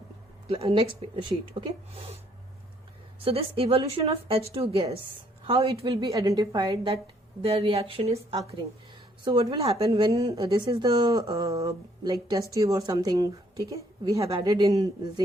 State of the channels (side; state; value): both; normal; correlation 0.66